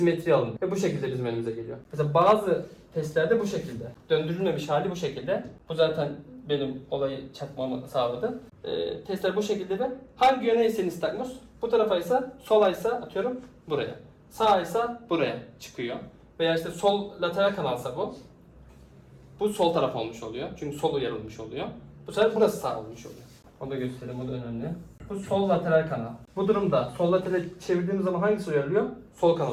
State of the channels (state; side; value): identical; both; correlation 1.00